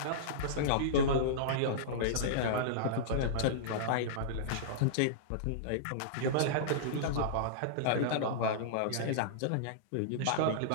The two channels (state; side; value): different; both; correlation -0.03